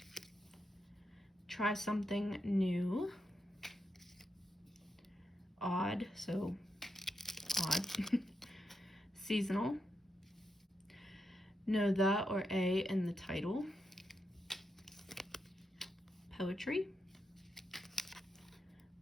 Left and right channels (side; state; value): both; normal; correlation 0.85